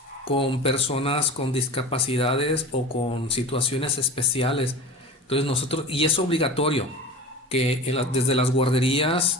con personas con discapacidades o con situaciones especiales. Entonces nosotros, y es obligatorio que desde las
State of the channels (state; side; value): normal; both; correlation 0.33